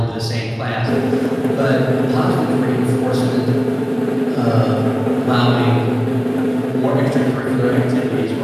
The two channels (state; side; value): identical; both; correlation 1.00